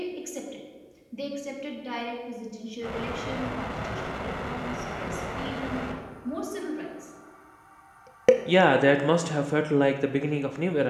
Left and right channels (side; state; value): both; identical; correlation 1.00